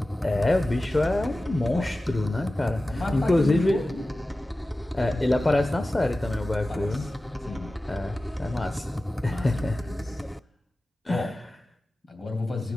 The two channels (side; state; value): both; normal; correlation 0.96